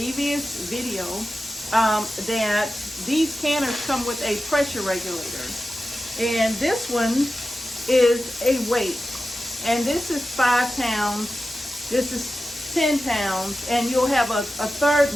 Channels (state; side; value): normal; both; correlation 0.93